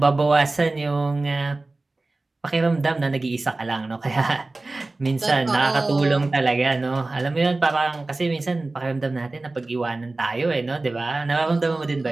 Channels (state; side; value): quieter; left; 3.2 dB